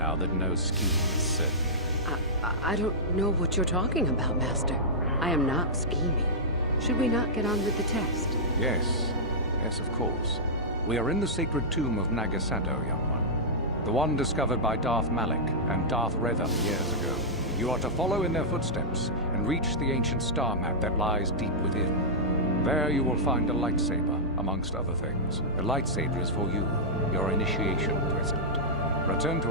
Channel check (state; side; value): normal; both; correlation -0.12